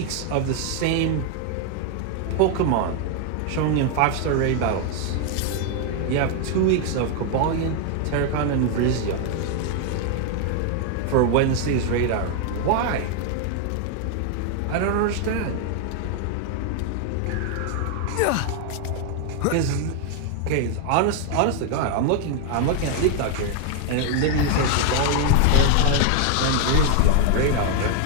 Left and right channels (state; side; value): different; both; correlation 0.00